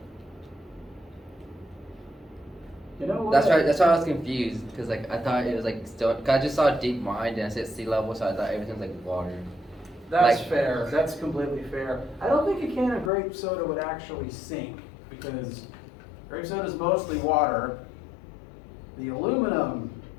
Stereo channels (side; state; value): right; drops out; at 13.1 s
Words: You know what? That's right. That's why I was confused because like I thought it was like still. Cause I just saw deep mine and I said sea level, so I thought everything was like water. That's like- fair. That's completely fair. I don't think a can of grape soda would actually sink because grape soda is mostly water. The aluminum